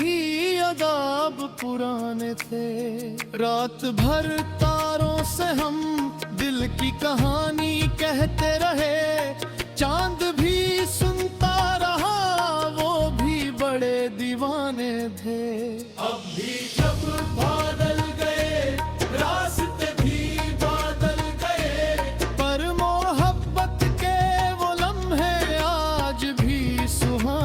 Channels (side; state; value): both; identical; correlation 1.00